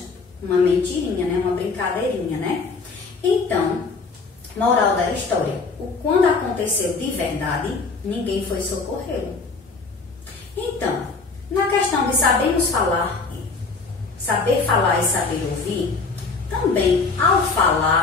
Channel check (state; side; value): quieter; right; 4.3 dB